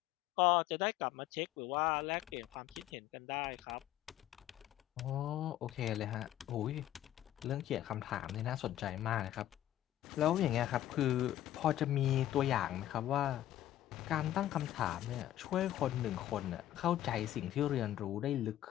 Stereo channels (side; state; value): right; quieter; 13.0 dB